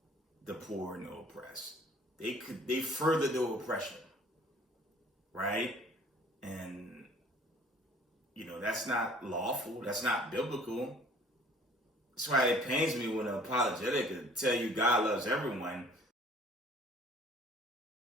the poor and the oppressed. They further the oppression, right? And that's not lawful. That's not biblical. That's why it pains me when an apologetic could tell you God loves everyone.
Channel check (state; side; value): normal; both; correlation 0.53